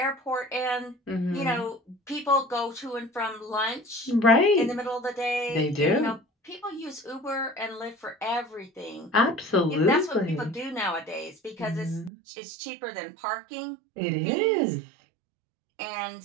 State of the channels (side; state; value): left; drops out; at 12.1 s